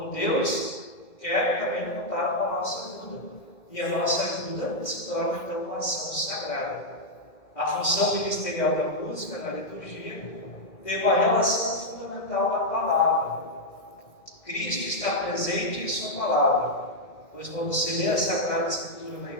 Deus quer também contar com a nossa ajuda. E a nossa ajuda se torna, então, uma ação sagrada. A função ministerial da música, na liturgia, tem uma relação fundamental com a palavra. Cristo está presente em sua palavra, pois quando se lê a Sagrada Escritura na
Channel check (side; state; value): right; late; 2.1 ms